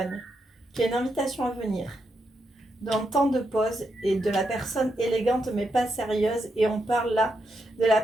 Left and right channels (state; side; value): normal; both; correlation 0.83